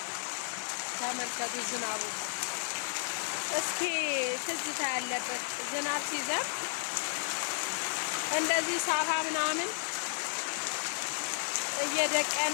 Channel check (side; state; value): right; silent; digital silence